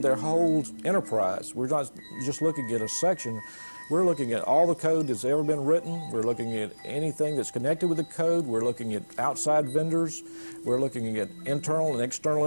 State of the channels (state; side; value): inverted; both; correlation -1.00